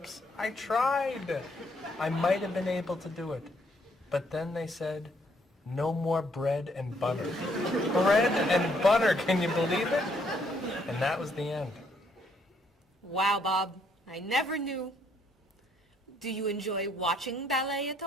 I tried. I might have been able to do it. But then they said, no more bread and butter. Bread and butter, can you believe it? And that was the end. Wow, Bob. I never knew. Do you enjoy watching ballet at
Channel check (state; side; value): normal; both; correlation 0.70